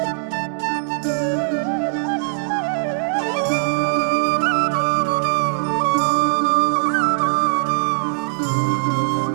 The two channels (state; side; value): silent; left; digital silence